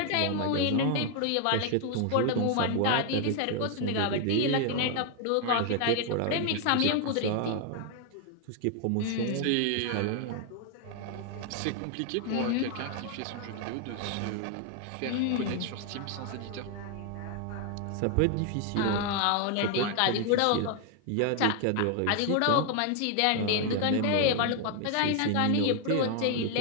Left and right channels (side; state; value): both; different; correlation 0.00